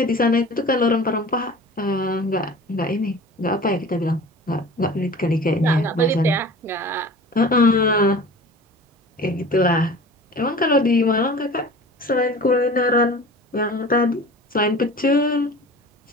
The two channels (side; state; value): both; normal; correlation 0.40